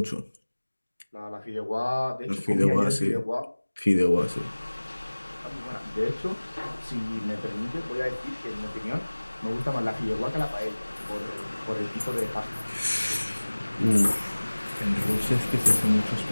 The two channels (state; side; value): inverted; both; correlation -1.00